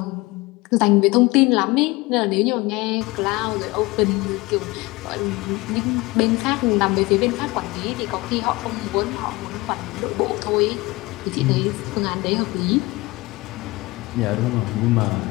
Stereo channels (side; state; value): right; quieter; 22.3 dB